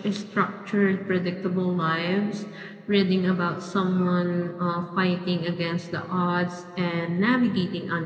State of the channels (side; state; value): both; identical; correlation 1.00